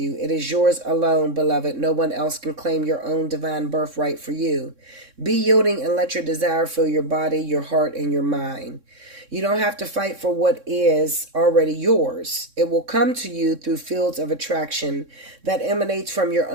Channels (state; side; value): late; left; 3.6 ms